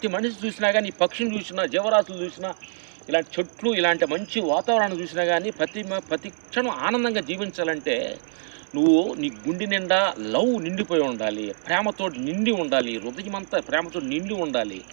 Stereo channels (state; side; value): silent; left; digital silence